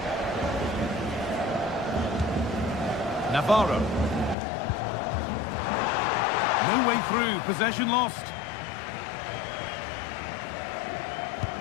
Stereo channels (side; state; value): right; drops out; at 4.4 s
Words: Navarro. No way through, possession lost.